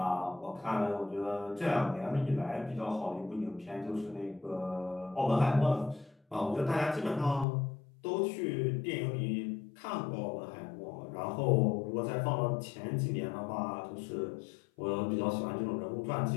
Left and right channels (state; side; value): drops out; right; at 7.5 s